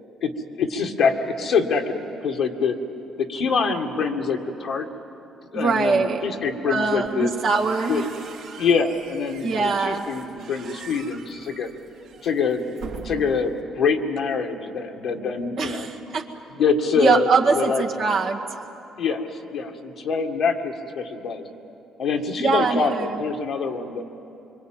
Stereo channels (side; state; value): both; normal; correlation 0.64